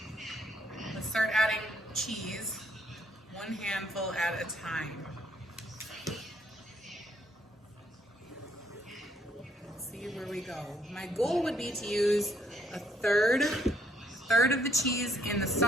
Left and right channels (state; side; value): normal; both; correlation 0.70